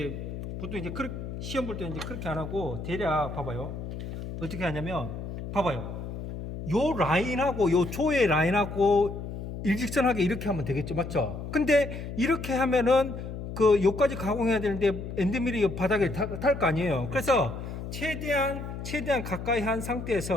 보통 이제 시험 볼 때 이제 그렇게 안 하고 대략 봐봐요. 어떻게 하냐면 봐봐요. 요 라인하고 요 조의 라인하고 일직선하게 이렇게 하면 되겠죠, 맞죠? 근데 이렇게 하면은 요까지 가공해야 되는데 엔드밀이 바닥에 닿을 거 아니에요. 그래서 최대한 가까이 한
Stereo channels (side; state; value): left; noise; hum, 8 dB below the sound